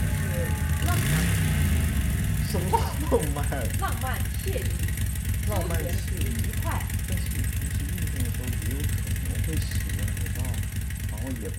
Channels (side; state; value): both; identical; correlation 1.00